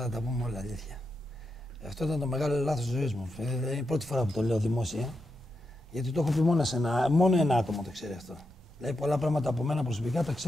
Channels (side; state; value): both; normal; correlation 0.86